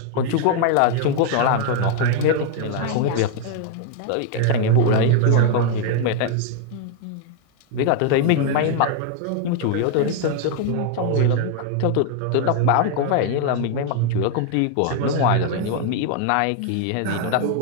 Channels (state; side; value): different; both; correlation 0.00